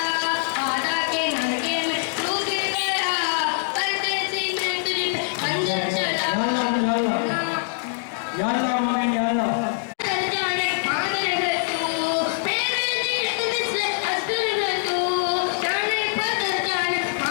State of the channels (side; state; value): right; silent; digital silence